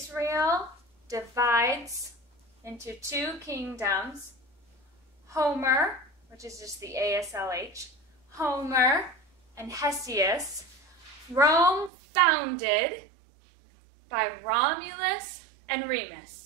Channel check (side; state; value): left; drops out; at 11.9 s